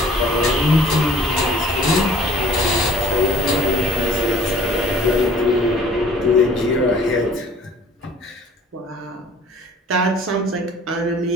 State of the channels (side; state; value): both; normal; correlation 0.52